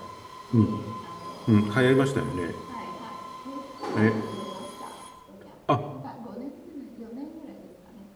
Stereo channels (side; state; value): both; identical; correlation 1.00